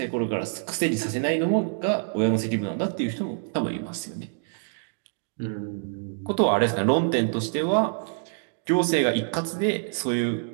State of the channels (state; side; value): silent; left; digital silence